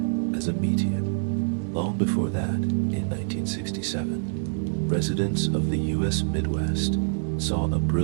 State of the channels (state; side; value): silent; left; 61 dB below the other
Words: as a meteor. Long before that, in 1967, residents of the U.S. Midwest saw a